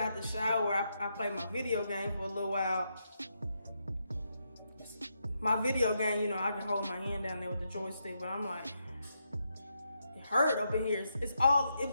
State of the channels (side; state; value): both; inverted; correlation -0.82